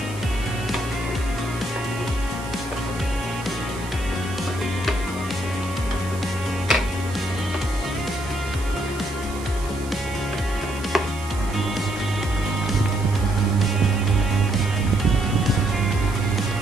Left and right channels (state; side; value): noise; right; hiss, 17 dB below the sound